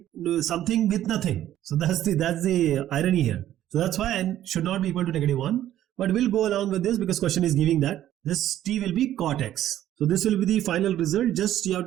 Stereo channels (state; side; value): quieter; left; 12.4 dB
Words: with nothing? So that's the irony here. So that's why n should not be equal to negative 1. But we'll go along with this because question is giving that. This t will be cot x. So this will be the final result. Just you have